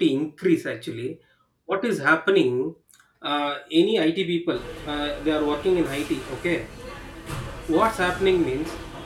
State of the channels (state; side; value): identical; both; correlation 1.00